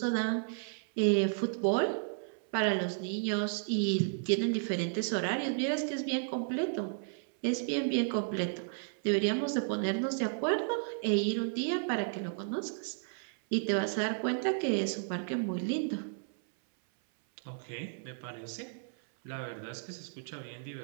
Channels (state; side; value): silent; left; 56 dB below the other